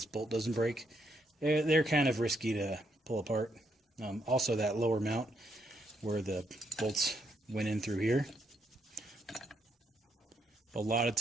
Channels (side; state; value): both; normal; correlation 0.76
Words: bolt doesn't break. They're kind of risky to pull apart. Also, that lower mount where the bolts went in through here, a lot of